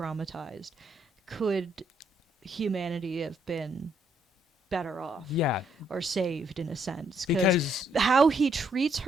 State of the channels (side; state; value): both; normal; correlation 0.72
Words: could humanity have been better off? Yeah. Or saved, in a sense. Because how he treats